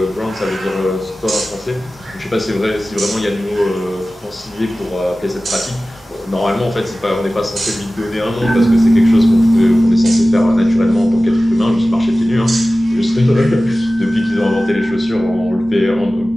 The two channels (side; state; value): both; normal; correlation 0.96